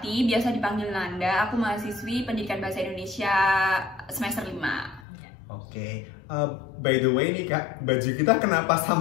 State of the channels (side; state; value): right; drops out; at 5.1 s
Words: biasa dipanggil Nanda. Aku mahasiswi pendidikan bahasa Indonesia semester 5. Oke. By the way nih kak, baju kita kenapa